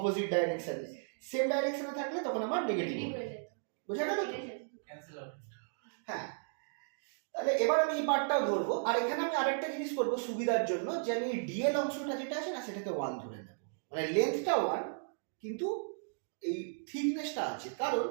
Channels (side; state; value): left; silent; digital silence